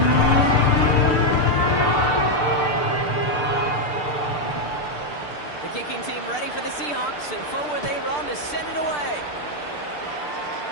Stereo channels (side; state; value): right; late; 6.7 ms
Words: The kicking team ready for the Seahawks, and forward they run to send it away.